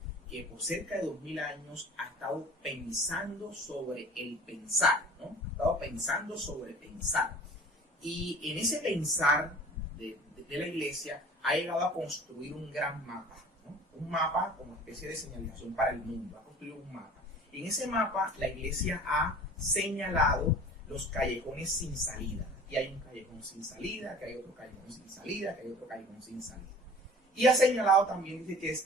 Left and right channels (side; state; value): both; normal; correlation 0.45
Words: que por cerca de 2000 años ha estado pensando sobre el pensar, ¿no? Ha estado pensando sobre pensar. Y en ese pensar de la Iglesia ha llegado a construir un gran mapa, ¿no? Un mapa como especie de señalización para el mundo, ha construido un mapa. En ese mapa la Iglesia ha señalado los callejones sin salida. Y hay un callejón sin salida, que hay otro callejón sin salida, que hay otro callejón sin salida. Y ha señalado también, dice